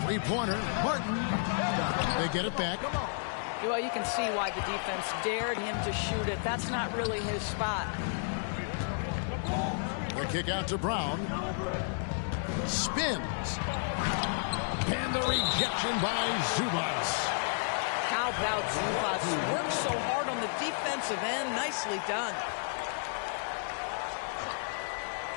Three-pointer, Martin. They get it back. Well, you can see why the defense dared him to shoot it. That's not really his spot. The kick out to Brown. Spins. And the rejection by Zubas. How about Zubas? Worked so hard on the defensive end. Nicely done.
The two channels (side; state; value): right; silent; digital silence